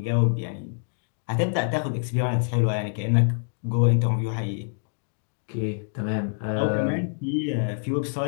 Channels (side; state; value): right; silent; digital silence